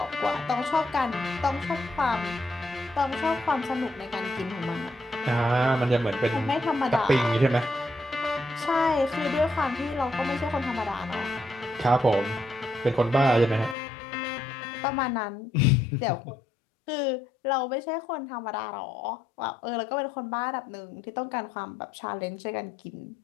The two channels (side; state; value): right; drops out; at 13.8 s